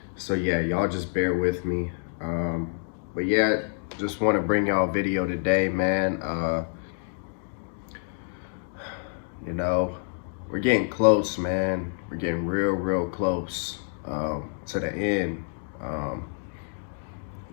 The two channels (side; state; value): right; silent; 60 dB below the other